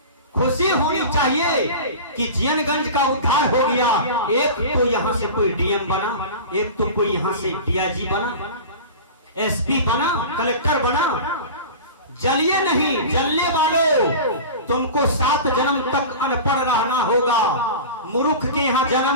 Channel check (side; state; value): both; inverted; correlation -0.33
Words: खुशी होनी चाहिए कि जीनगंज का उद्धार हो गया। एक तो यहाँ से कोई डीएम बना, एक तो कोई यहाँ से डीआईजी बना, एसपी बना, कलेक्टर बना। जलिए नहीं, जलने वालों, तुमको 7 जन्म तक अनपढ़ रहना होगा, मूर्ख के यहाँ